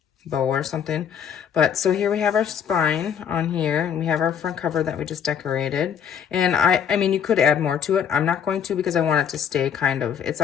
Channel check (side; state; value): right; quieter; 8.1 dB